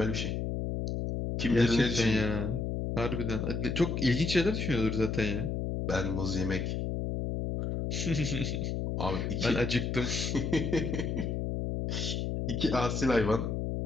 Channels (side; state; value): left; noise; hum, 1 dB below the sound